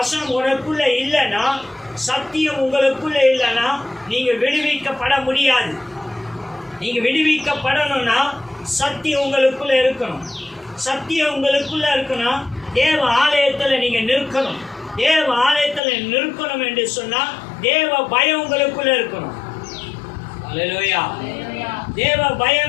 உனக்குள்ள இல்லைன்னா, சத்தியம் உங்களுக்குள்ள இல்லைன்னா நீங்க விடுவிக்கப்பட முடியாது. நீங்க விடுவிக்கப்படணும்னா சத்தியம் உங்களுக்குள்ள இருக்கணும். சத்தியம் உங்களுக்குள்ள இருக்கணும். தேவ ஆலயத்துல நீங்க நிற்கணும். தேவ ஆலயத்துல நிற்கணும் என்று சொன்னா தேவ பயம் உங்களுக்குள்ள இருக்கணும். அல்லேலூயா. தேவ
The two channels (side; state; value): right; drops out; at 15.8 s